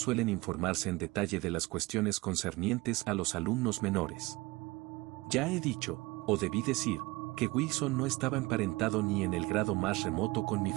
informarse en detalle de las cuestiones concernientes a los alumnos menores. Ya he dicho, o debí decir, que Wilson no estaba emparentado ni en el grado más remoto con mi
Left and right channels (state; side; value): quieter; left; 22.1 dB